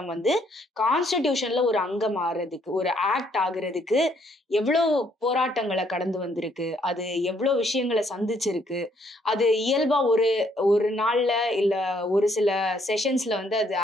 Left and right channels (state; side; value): normal; both; correlation 0.69